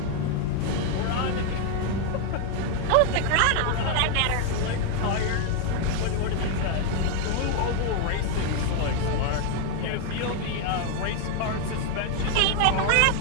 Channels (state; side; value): different; both; correlation 0.01